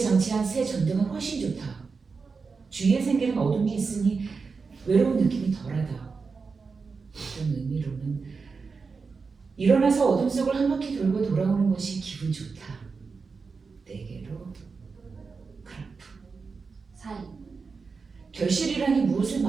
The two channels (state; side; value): quieter; left; 4.8 dB